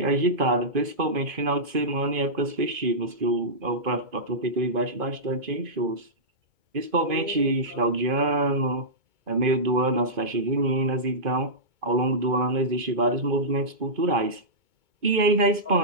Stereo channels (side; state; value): left; late; 2.5 ms